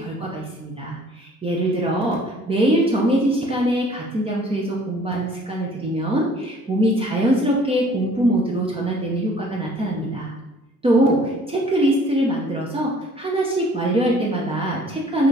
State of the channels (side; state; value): both; normal; correlation 0.54